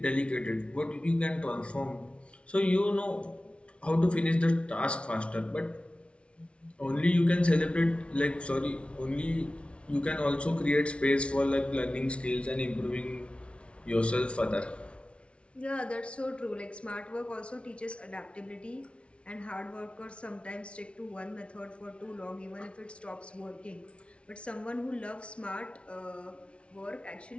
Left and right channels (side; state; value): right; late; 0.060 ms